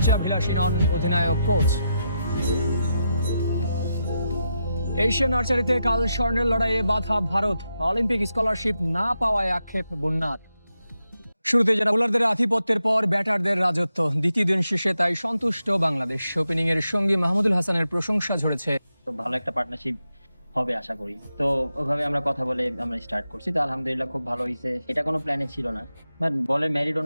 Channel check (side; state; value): both; inverted; correlation -0.86